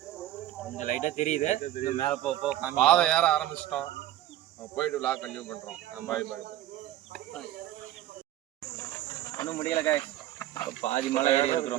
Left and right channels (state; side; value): quieter; left; 13.8 dB